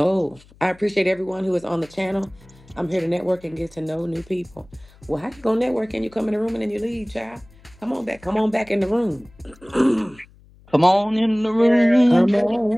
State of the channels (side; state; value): left; noise; hum, 26 dB below the sound